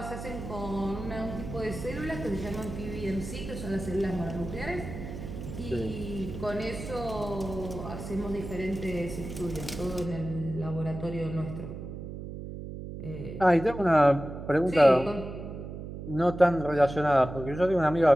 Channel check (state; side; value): noise; right; hum, 9 dB below the sound